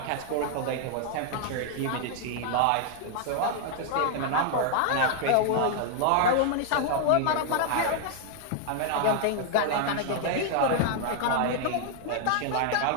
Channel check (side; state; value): both; different; correlation 0.00